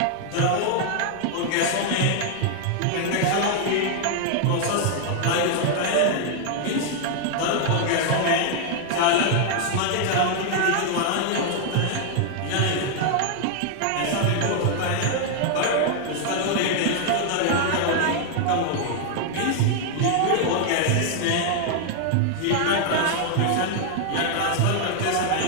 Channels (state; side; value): different; both; correlation 0.00